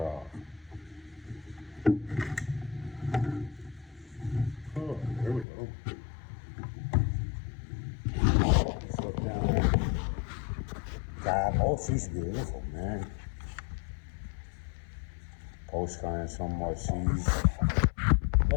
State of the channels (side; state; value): right; drops out; at 5.5 s